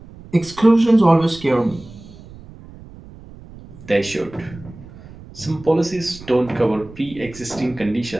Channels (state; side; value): noise; right; rumble, 19 dB below the sound